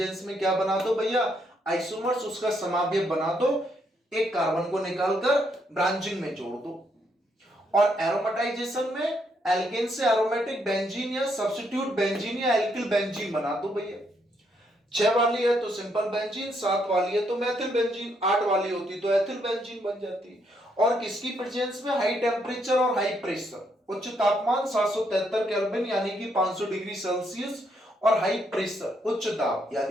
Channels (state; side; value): normal; both; correlation 0.75